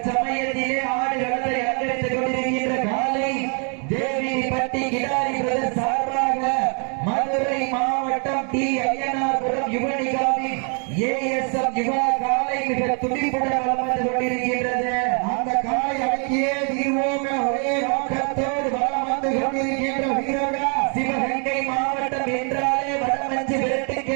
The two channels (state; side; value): quieter; left; 39.8 dB